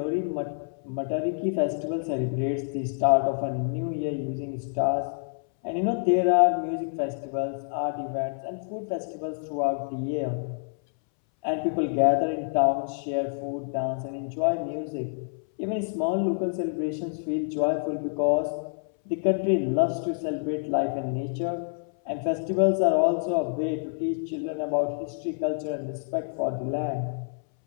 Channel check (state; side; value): silent; right; 60 dB below the other